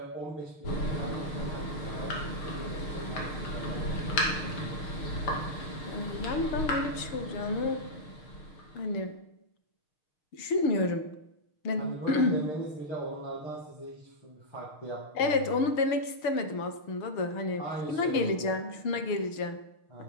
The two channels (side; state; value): right; late; 6.5 ms